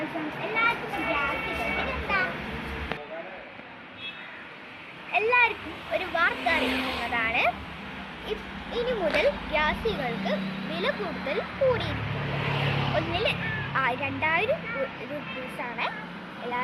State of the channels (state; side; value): identical; both; correlation 1.00